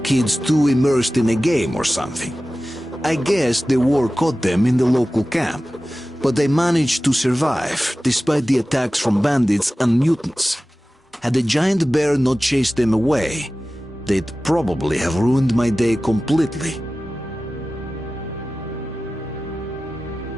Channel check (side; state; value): both; normal; correlation 0.96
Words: kids too immersed in a game or something. I guess the war caught them in the local camp, but they managed to survive despite the attacks from bandits and mutants. Had the giant bear not chased them away, they'd probably have ruined my day completely.